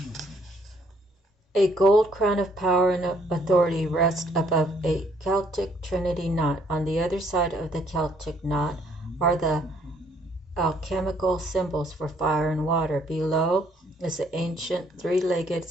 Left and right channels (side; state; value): both; normal; correlation 0.66